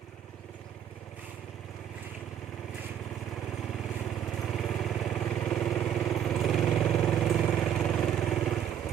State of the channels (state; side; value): quieter; left; 9.6 dB